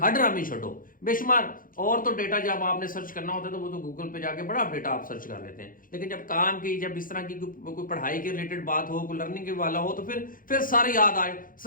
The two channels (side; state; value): right; late; 0.40 ms